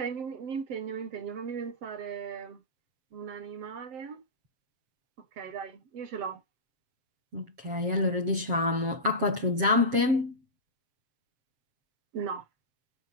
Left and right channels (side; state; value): left; late; 7.2 ms